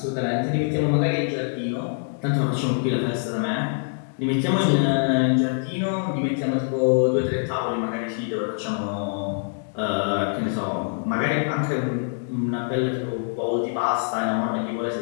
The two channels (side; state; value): right; silent; digital silence